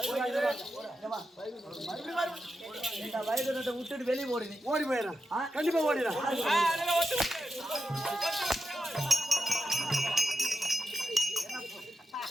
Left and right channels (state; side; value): normal; both; correlation 0.89